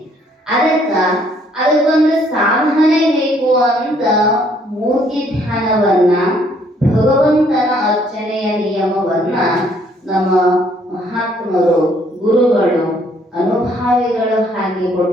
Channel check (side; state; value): both; normal; correlation 0.65